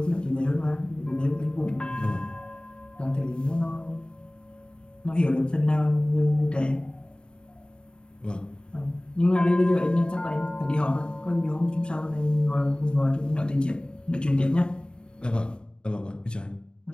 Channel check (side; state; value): right; late; 0.050 ms